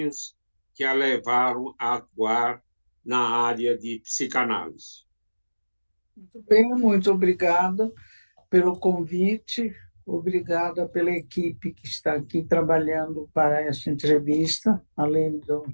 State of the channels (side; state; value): both; inverted; correlation -1.00